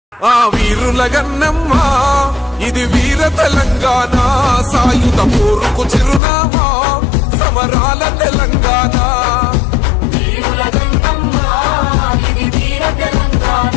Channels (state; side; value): drops out; right; at 6.2 s